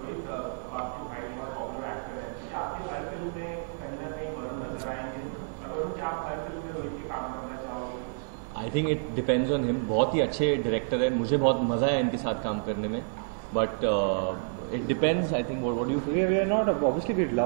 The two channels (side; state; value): left; silent; digital silence